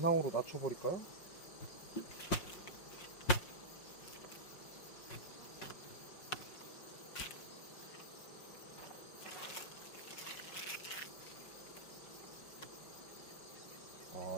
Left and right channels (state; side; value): late; right; 5.6 ms